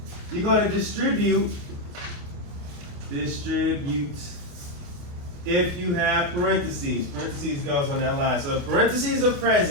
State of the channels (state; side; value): late; left; 28 ms